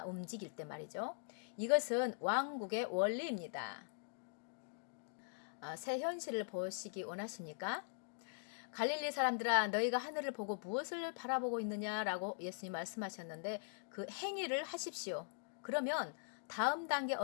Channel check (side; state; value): right; silent; digital silence